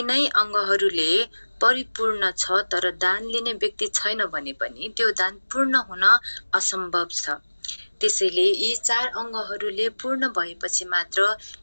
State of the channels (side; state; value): both; inverted; correlation -1.00